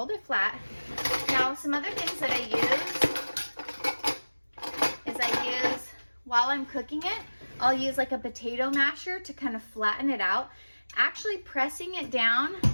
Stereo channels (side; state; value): both; inverted; correlation -1.00